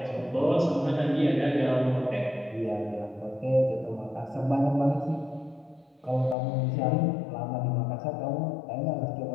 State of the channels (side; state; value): right; drops out; at 6.4 s